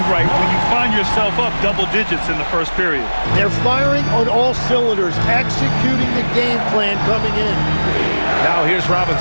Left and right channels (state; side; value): inverted; both; correlation -1.00